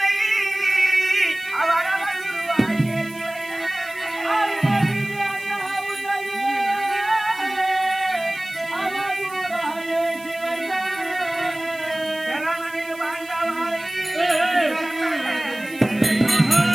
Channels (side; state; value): right; noise; hiss, 20 dB below the sound